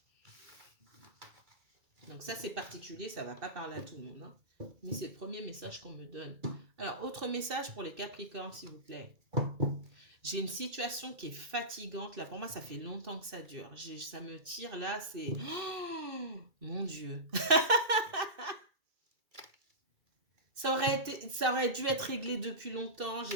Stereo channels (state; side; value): late; left; 2.3 ms